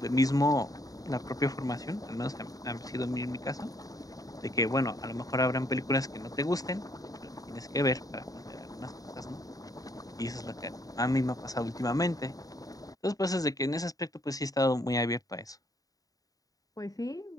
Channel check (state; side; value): late; right; 0.18 ms